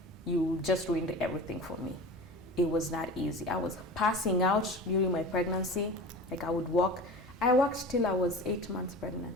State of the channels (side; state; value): both; normal; correlation 0.35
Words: you just ruined everything for me. It was not easy. I was passing out during my pregnancy. Like I would walk. I walked till I was 8 months